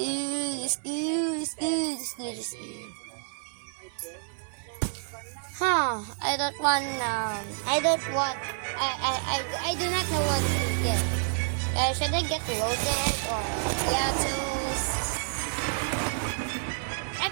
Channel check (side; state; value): left; silent; 59 dB below the other